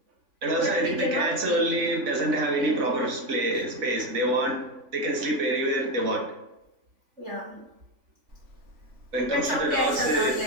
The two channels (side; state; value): left; late; 3.5 ms